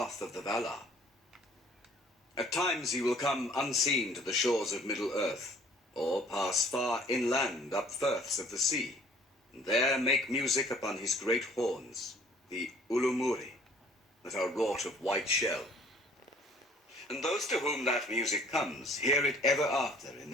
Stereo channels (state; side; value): normal; both; correlation 0.55